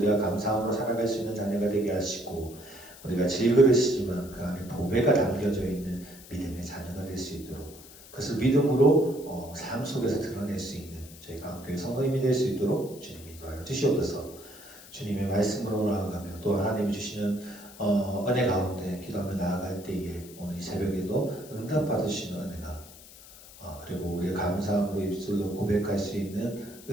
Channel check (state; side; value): noise; left; hiss, 19 dB below the sound